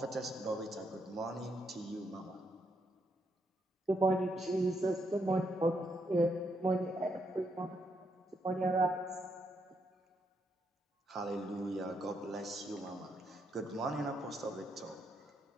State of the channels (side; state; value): both; normal; correlation 0.78